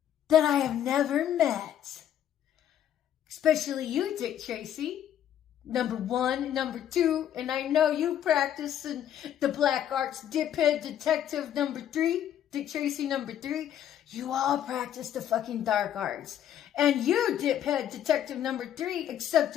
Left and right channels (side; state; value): right; quieter; 10.5 dB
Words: that I have never met. Especially you, Dick Tracy. Number 1, number 2, and I know you practice in the black arts, diphead detective number 3. Dick Tracy number 3, you all practice the fucking dark arts. And you, diphead detective number 3,